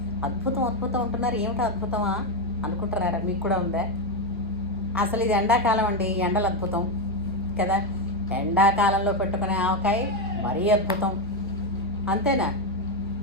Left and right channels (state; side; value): normal; both; correlation 0.07